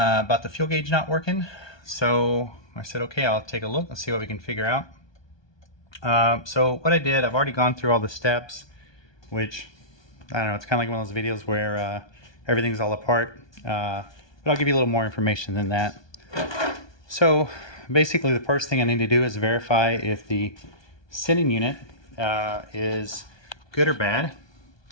the fuel gauge not working. So I said, okay, I'll take a look. Let's see what we can figure out. So what I did, I've already gone through all the steps, which, I don't know, it's kind of like one of those videos where everything's all apart, but I'll give you a little more information than that. So basically the first thing I need to do is verify if the sending unit is good or bad.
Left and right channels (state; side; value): late; right; 1.2 ms